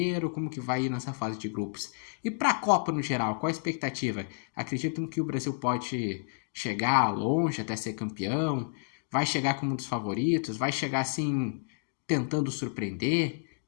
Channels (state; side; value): silent; right; digital silence